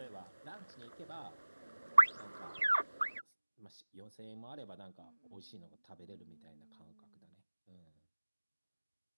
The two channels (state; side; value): inverted; both; correlation -1.00